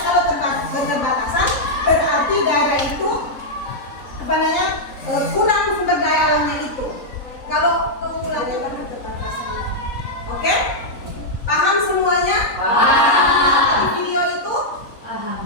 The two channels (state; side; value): late; right; 3.8 ms